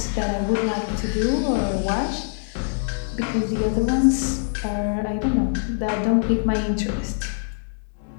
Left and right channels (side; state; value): right; silent; digital silence